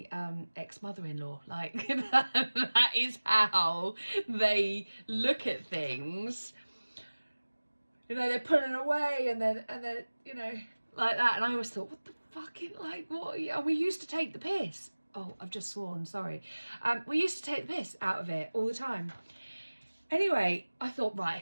ex-mother-in-law. Like that is how they look at things. you know, they're pulling away, and then, you know, like that. And I always thought, what the fucking, like, what? And we used to take the piss. Oh, I've just sworn, sorry. We used to take the piss out of it all the time. Anyway, I thought,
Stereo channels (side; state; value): both; inverted; correlation -1.00